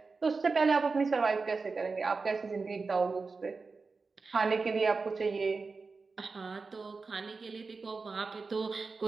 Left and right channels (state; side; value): quieter; left; 4.3 dB